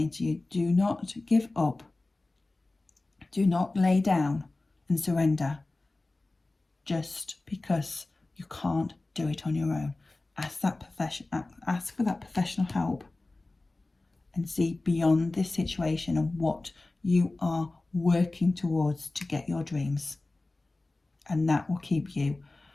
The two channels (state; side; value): quieter; right; 3.0 dB